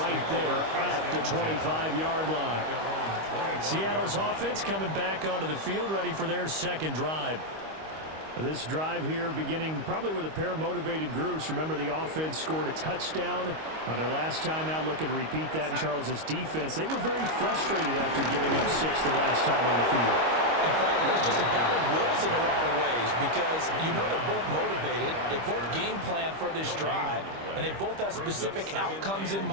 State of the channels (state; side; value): late; left; 25 ms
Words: there at the 25-yard line. Seattle's offense coming back onto the field, ready for their second drive. This drive here beginning probably with a pair of motivated groups. Remember, the offense scored a touchdown on their last time out, looking to repeat that in Charles' defense. They were very frustrated after giving up 6 the last time on the field. And frankly, it's just a battle of wills in a lot of ways because you know they're both motivated. They both game plan for this drive, and they both have specific outcomes in